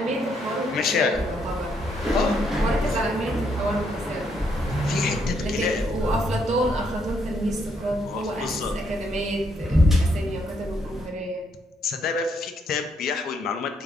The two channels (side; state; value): both; normal; correlation 0.74